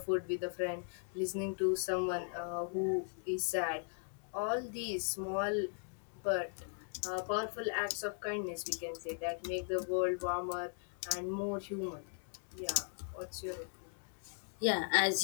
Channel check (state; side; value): silent; right; 52 dB below the other